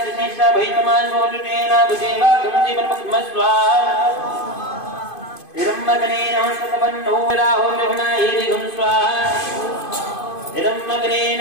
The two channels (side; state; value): right; late; 2.5 ms